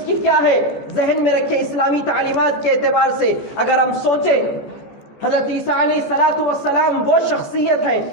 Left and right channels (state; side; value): late; right; 14 ms